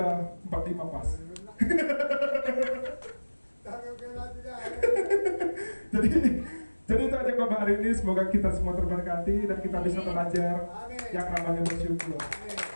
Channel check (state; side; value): inverted; both; correlation -1.00